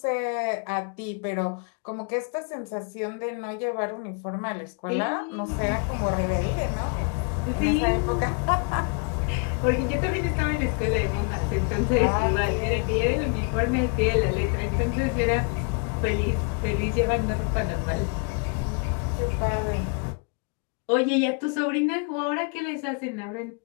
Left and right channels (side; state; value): right; quieter; 35.5 dB